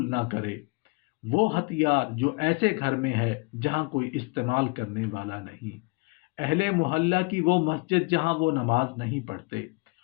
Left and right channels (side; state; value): right; quieter; 28.7 dB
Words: نہ کرے، وہ ہتھیار جو ایسے گھر میں ہے جہاں کوئی استعمال کرنے والا نہیں، اہل محلہ کی وہ مسجد جہاں وہ نماز نہیں پڑھتے،